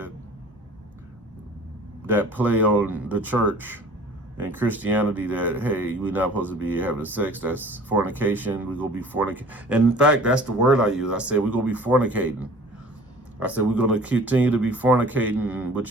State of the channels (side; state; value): both; normal; correlation 0.47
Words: that play on the church and Christianity, that, hey, we're not supposed to be having sex. That's fornication. We're going to be fornicating. And in fact, that's the word I use. I said, we're going to be fornicating. I said, we're going to continue to be fornicating,